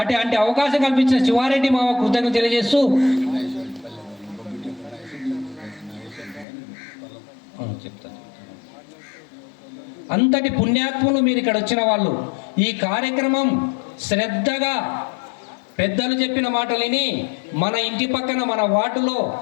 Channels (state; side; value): drops out; right; at 6.5 s